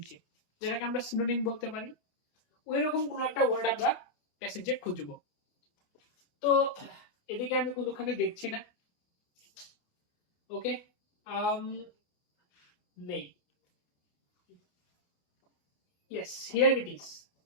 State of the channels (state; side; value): late; right; 28 ms